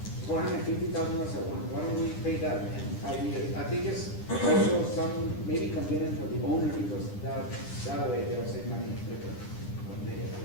$450,000 at once? Why don't we pay that in 5 years? I think it's also some, maybe convenient for the owner, because that way they'll save money quicker.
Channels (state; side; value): late; right; 9.9 ms